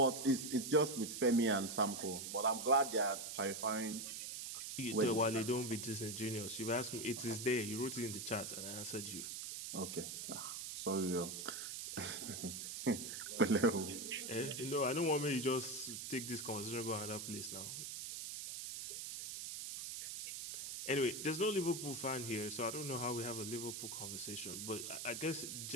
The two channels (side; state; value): right; noise; hiss, 6 dB below the sound